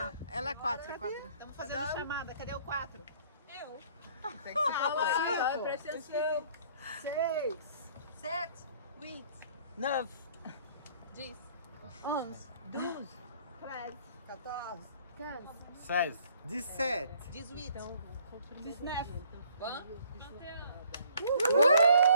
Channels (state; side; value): inverted; both; correlation -0.59